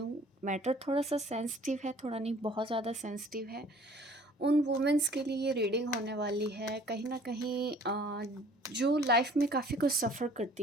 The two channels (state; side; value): normal; both; correlation 0.53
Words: मैटर थोड़ा सा सेंसिटिव है, थोड़ा नहीं बहुत ज़्यादा सेंसिटिव है। उन वुमेंस के लिए ये रीडिंग होने वाली है कहीं ना कहीं जो लाइफ में काफ़ी कुछ सफ़र